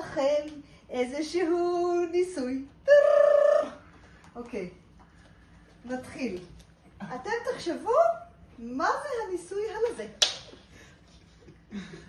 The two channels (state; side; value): identical; both; correlation 1.00